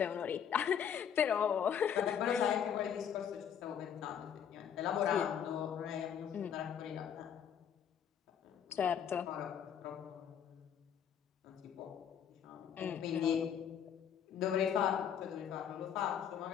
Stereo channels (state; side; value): quieter; right; 8.4 dB